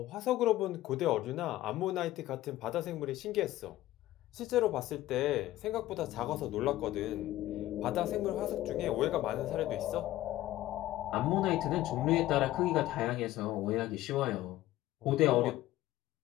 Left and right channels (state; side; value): quieter; right; 15.4 dB